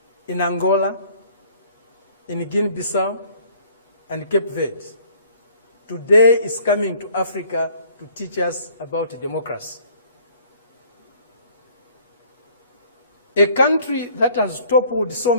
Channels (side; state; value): both; inverted; correlation -0.56